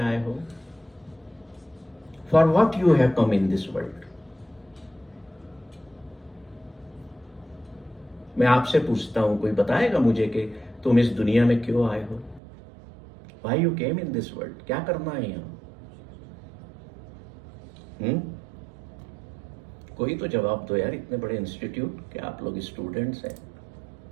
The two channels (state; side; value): drops out; left; at 12.4 s